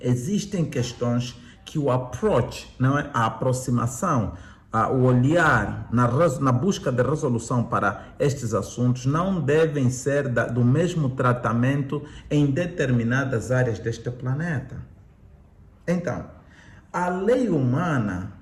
Existem questões que o approach, não é? A aproximação, o olhar na busca de resolução para estes assuntos não devem ser do mesmo tratamento em determinadas áreas deste planeta. Então, a lei humana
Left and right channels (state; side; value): identical; both; correlation 1.00